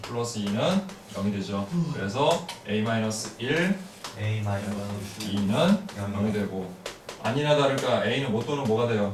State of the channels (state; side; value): identical; both; correlation 1.00